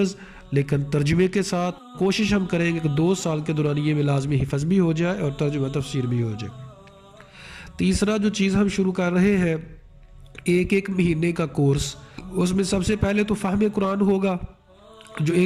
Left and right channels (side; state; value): both; identical; correlation 1.00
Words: لیکن ترجمے کے ساتھ۔ کوشش ہم کریں گے کہ 2 سال کے دورانیے میں لازمی حفظ بھی ہو جائے اور ترجمہ تفسیر بھی ہو جائے۔ تیسرا جو چیز ہم شروع کر رہے ہیں، ایک مہینے کا کورس۔ اس میں سب سے پہلے تو فہم قرآن ہوگا۔ جو